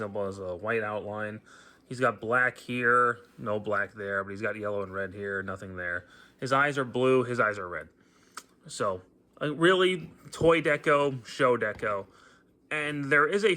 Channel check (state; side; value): identical; both; correlation 1.00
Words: has a white outline. He's got black here, no black there, but he's got yellow and red here, nothing there. His eyes are blue, his eyes are red. So, really, toy deco, show deco. And there is a